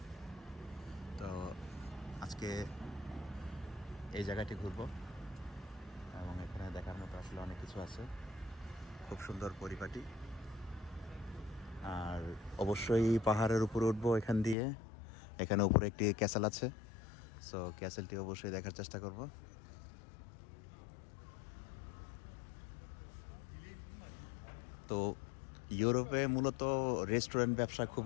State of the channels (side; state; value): right; drops out; at 14.6 s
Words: তো আজকে এই জায়গাটি ঘুরব এবং এখানে দেখার মতো আসলে অনেক কিছু আছে, খুব সুন্দর পরিপাটি। আর অবশ্যই পাহাড়ের উপরে উঠবো এখান দিয়ে। এখানে উপরে একটি ক্যাসেল আছে, সো ক্যাসেলটি অবশ্যই দেখার চেষ্টা করব। তো ইউরোপে মূলত রেস্টুরেন্ট ব্যবসা